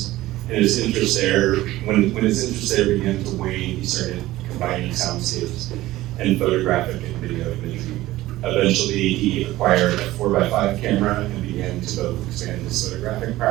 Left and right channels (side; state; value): left; quieter; 16.6 dB